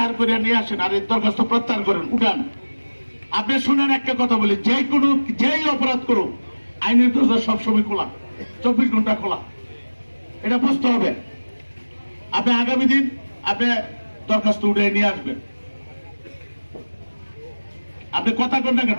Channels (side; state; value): both; inverted; correlation -1.00